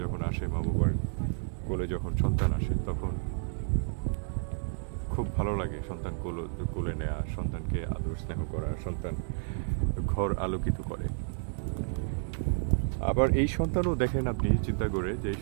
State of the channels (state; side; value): silent; left; digital silence